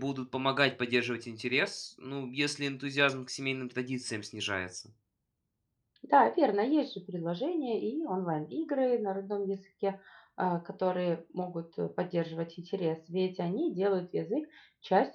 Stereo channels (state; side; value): identical; both; correlation 1.00